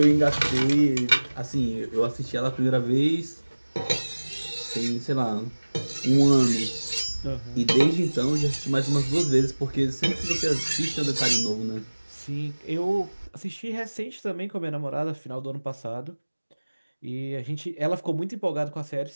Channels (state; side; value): inverted; both; correlation -1.00